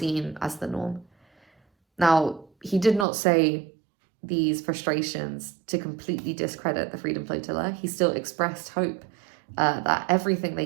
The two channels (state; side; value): drops out; left; at 3.1 s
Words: as the norm. Now, he did not say these frustrations to completely discredit the Freedom Flotilla. He still expressed hope that everything they